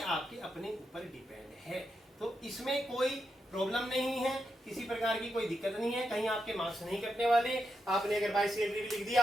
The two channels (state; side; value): normal; both; correlation 0.85